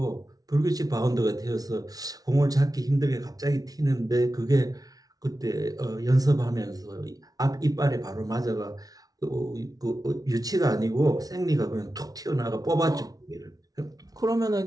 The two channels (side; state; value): left; late; 0.18 ms